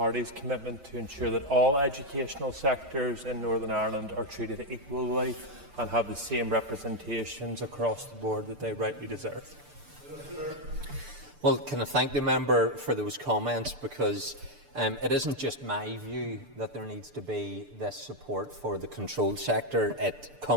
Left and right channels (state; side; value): late; left; 6.7 ms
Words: commitment, to ensure that all educational sectors in Northern Ireland are treated equally and have the same representations across the board that they rightly deserve? Well, can I thank the member for those comments, because it isn't just my view that there needs to be this support for the controlled sector. It